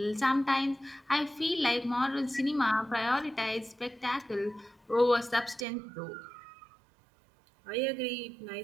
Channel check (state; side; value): drops out; left; at 5.7 s